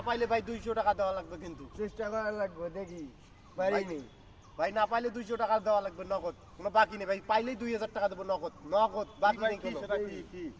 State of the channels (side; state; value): both; identical; correlation 1.00